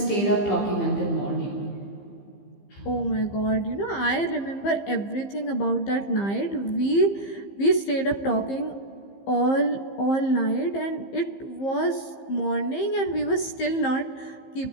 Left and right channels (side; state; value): right; late; 15 ms